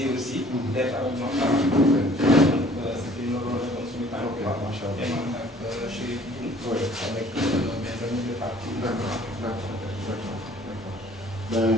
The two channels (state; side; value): normal; both; correlation 0.55